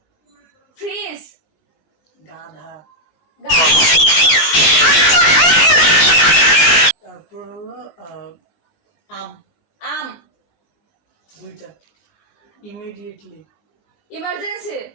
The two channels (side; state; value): right; late; 19 ms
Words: ফ্রিজ গাধা। তারপর হলো আম দুইটা। ইমিডিয়েটলি ইমার্জেন্সি